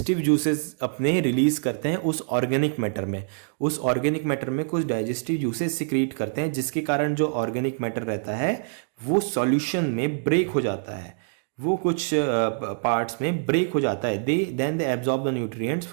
जूसेस अपने रिलीज करते हैं उस ऑर्गेनिक मैटर में। उस ऑर्गेनिक मैटर में कुछ डाइजेस्टिव जूसेस सिक्रीट करते हैं जिसके कारण जो ऑर्गेनिक मैटर रहता है वो सॉल्यूशन में ब्रेक हो जाता है, वो कुछ पार्ट्स में ब्रेक हो जाता है। Then they absorb the nutrients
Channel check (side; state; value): left; silent; digital silence